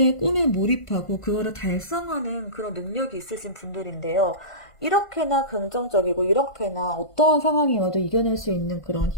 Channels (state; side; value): late; right; 1.5 ms